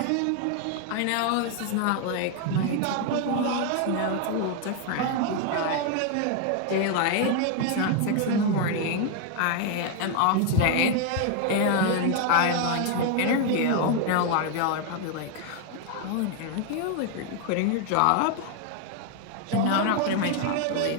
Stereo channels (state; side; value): different; both; correlation 0.00